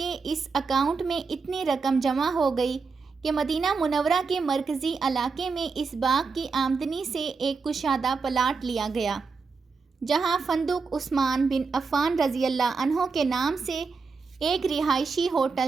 اس اکاؤنٹ میں اتنی رقم جمع ہو گئی کہ مدینہ منورہ کے مرکزی علاقے میں اس باغ کی آمدنی سے ایک کشادہ پلاٹ لیا گیا، جہاں فندق عثمان بن عفان رضی اللہ عنہ کے نام سے ایک رہائشی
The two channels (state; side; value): quieter; left; 4.8 dB